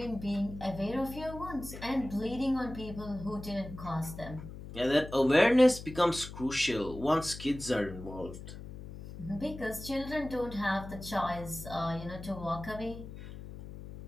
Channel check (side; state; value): left; noise; hum, 12 dB below the sound